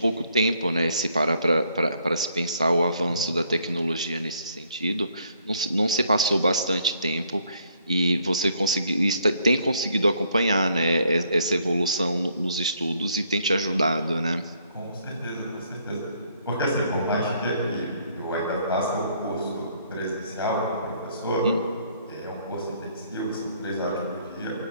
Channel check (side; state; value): both; inverted; correlation -0.67